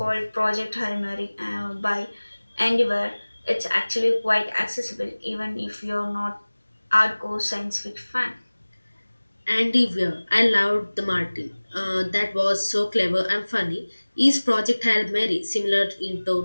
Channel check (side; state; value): both; inverted; correlation -1.00